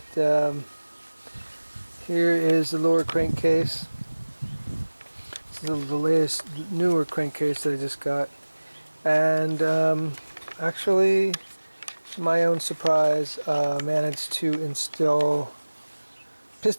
here is the lower crankcase. This is the latest, newer crankcase that I just got. And actually, to my own surprise, managed to install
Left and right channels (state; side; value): inverted; both; correlation -1.00